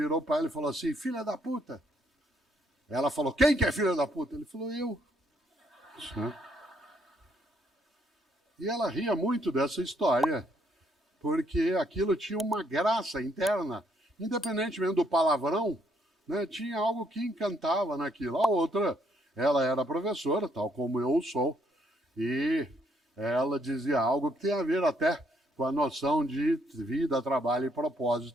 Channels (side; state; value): both; normal; correlation 0.71